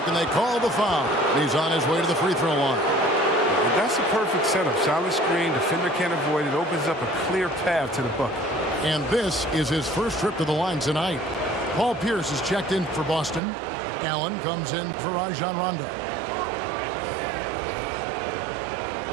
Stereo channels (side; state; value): left; drops out; at 13.4 s